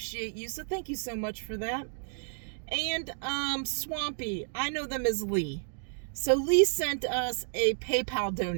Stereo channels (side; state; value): left; silent; digital silence